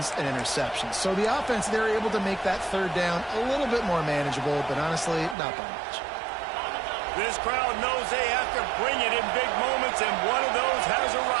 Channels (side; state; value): left; drops out; at 5.4 s